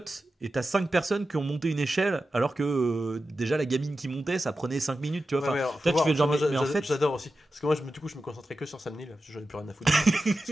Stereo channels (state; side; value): normal; both; correlation 0.92